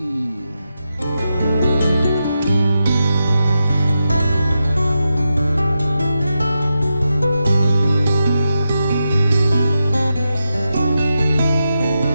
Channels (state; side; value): inverted; both; correlation -0.88